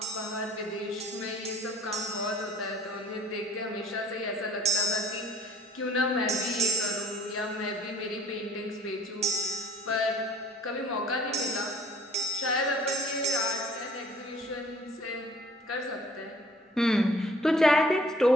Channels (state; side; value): normal; both; correlation 0.54